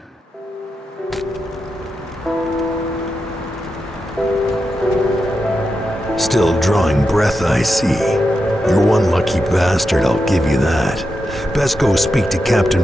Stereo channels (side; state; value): both; normal; correlation 0.88